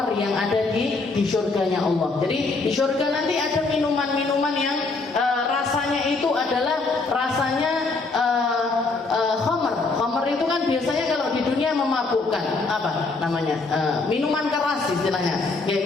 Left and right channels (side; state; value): right; quieter; 3.8 dB